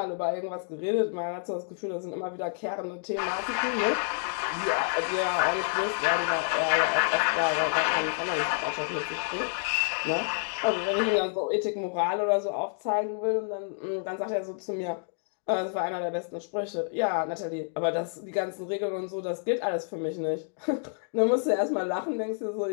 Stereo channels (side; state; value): right; silent; digital silence